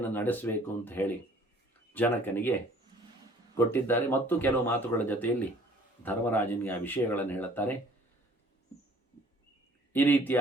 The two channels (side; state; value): both; normal; correlation 0.54